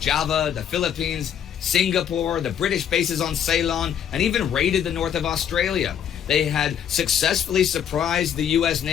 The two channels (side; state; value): right; quieter; 9.0 dB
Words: the Philippines, Singapore, the British bases on Ceylon, and even raided the north of Australia. They had successfully surprised the U.S.